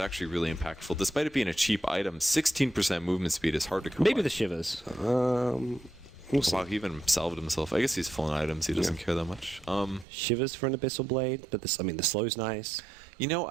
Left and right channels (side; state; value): left; drops out; at 10.1 s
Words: really impactful. Despite it being a cheap item, 16% movement speed is hard to come Maybe by. the Shivers. We'll see. Wow, he even salved himself. I guess he's full on items. He doesn't care that much. Shivers for an Abyssal Blade, but this, I mean, the slow's nice. You know,